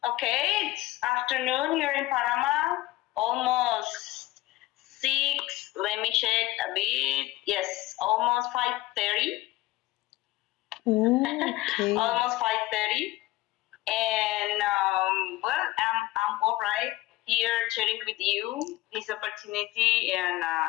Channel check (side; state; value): right; quieter; 17.9 dB